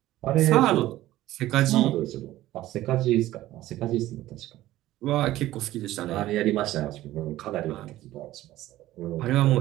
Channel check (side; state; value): left; quieter; 15.3 dB